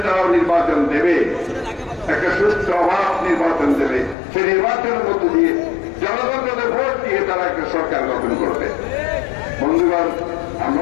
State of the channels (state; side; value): drops out; right; at 4.2 s